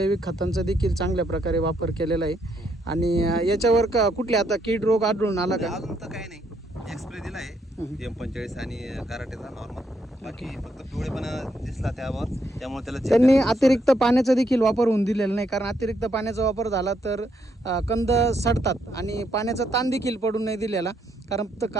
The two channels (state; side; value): normal; both; correlation 0.74